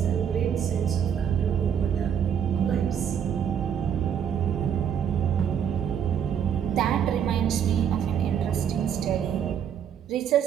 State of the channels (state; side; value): quieter; left; 8.4 dB